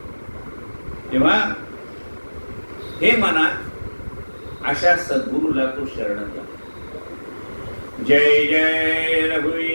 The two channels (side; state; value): both; inverted; correlation -1.00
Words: तेव्हा हे मना अशा सद्गुरूला तो शरण जा. जय जय